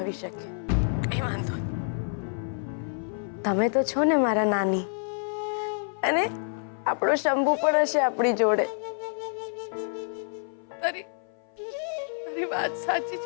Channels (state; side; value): silent; right; 56 dB below the other